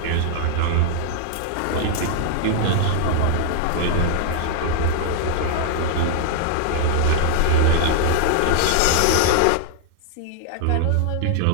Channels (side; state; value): both; different; correlation -0.01